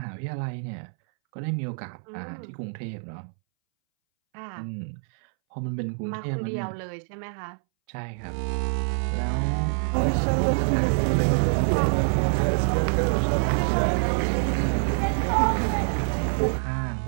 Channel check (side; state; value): left; silent; 61 dB below the other